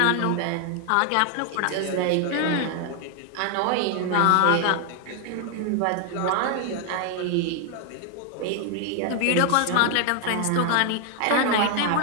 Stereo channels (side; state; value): both; different; correlation 0.01